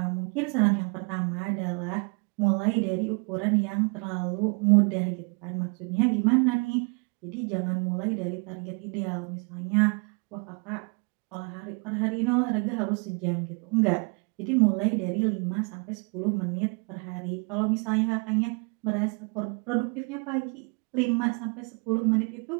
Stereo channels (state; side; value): quieter; left; 34.0 dB